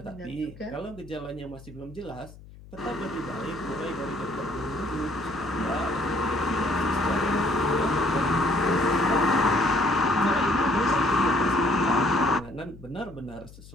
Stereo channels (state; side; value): noise; left; hum, 19 dB below the sound